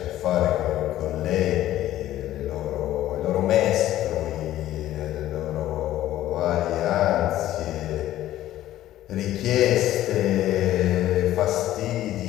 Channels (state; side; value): quieter; right; 13.7 dB